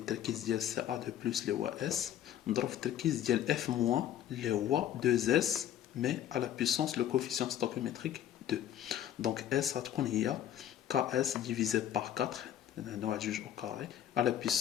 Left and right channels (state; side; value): quieter; right; 11.0 dB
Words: ديال CA2 plus اللي هو S مضروب في التركيز ديال F moins اللي هو 2S. Mais à la puissance, le coefficient stoichiométrique 2. Donc S a Ks divisé par 4, au carré, à la